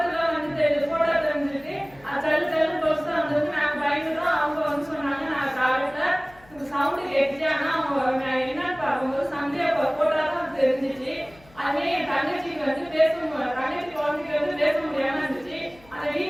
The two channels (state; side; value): noise; left; hum, 26 dB below the sound